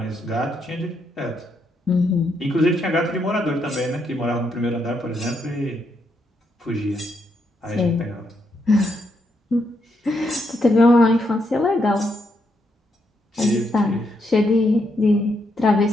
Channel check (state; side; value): normal; both; correlation 0.78